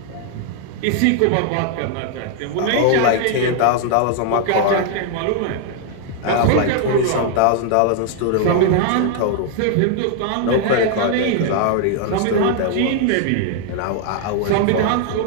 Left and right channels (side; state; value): both; different; correlation 0.00